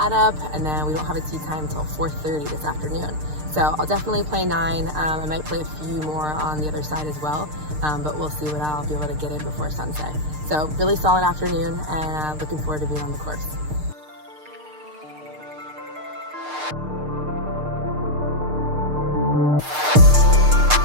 up, and then we don't have a tee time until 4:30 this afternoon. So I'll definitely play 9. I might play a few more on the other side as well, but we'll see what I'll be able to get in before sunset. So really solid afternoon, and looking forward to being on the course.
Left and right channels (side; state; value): left; late; 6.6 ms